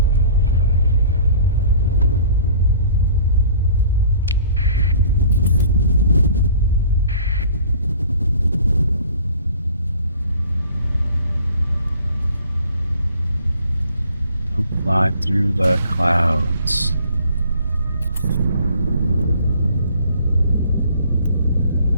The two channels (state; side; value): inverted; both; correlation -0.51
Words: Don't fly through the clouds.